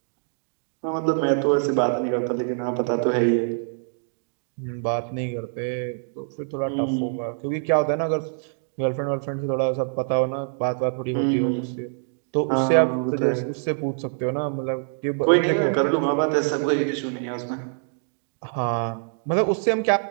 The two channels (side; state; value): left; silent; digital silence